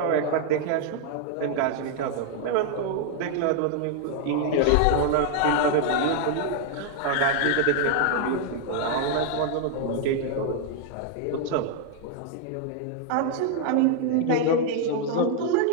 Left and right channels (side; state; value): both; different; correlation 0.00